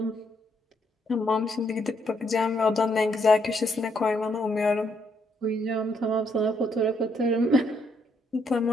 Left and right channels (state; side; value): normal; both; correlation 0.73